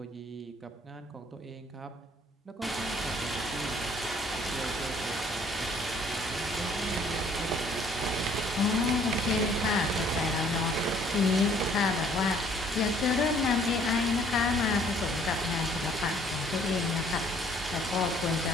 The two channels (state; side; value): normal; both; correlation 0.60